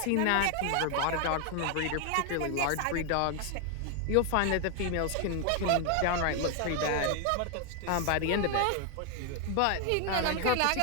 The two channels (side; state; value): both; different; correlation 0.00